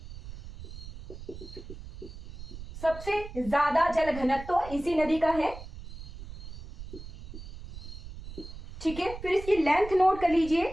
सबसे ज्यादा जल घनत्व इसी नदी का है। ठीक है, फिर इसकी लेंथ नोट कर लीजिए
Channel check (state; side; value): noise; right; rumble, 13 dB below the sound